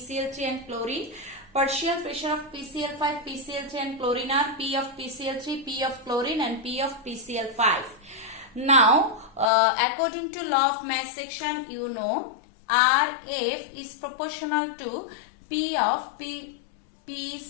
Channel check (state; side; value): drops out; right; at 9.5 s